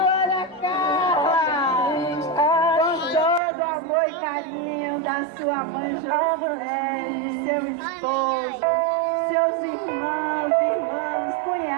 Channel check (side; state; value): left; drops out; at 3.4 s